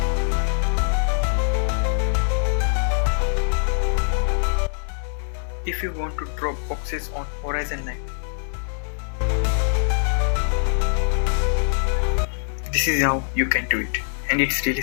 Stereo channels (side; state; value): right; silent; digital silence